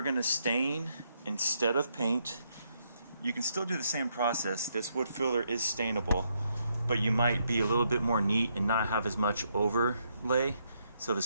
going to stain instead of paint, you can still do the same process. This wood filler is stainable, but you might be a little bit more neat and not have as much overlay, so the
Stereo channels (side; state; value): both; inverted; correlation -0.76